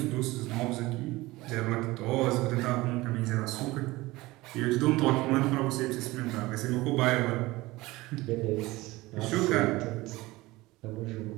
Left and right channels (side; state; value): left; quieter; 19.9 dB